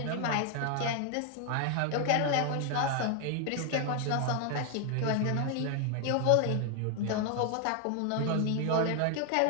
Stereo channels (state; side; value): different; both; correlation 0.01